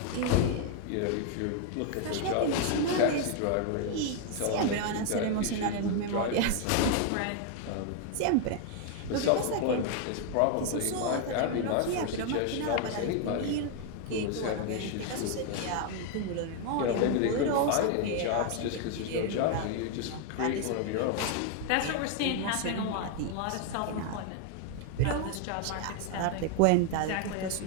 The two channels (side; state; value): both; different; correlation 0.00